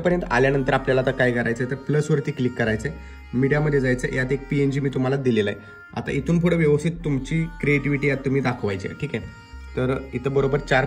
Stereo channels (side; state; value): both; identical; correlation 1.00